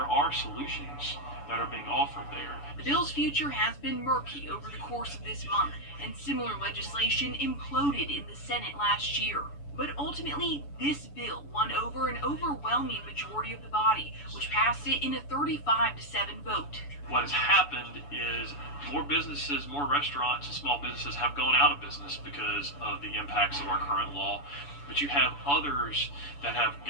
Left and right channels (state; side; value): late; right; 7.0 ms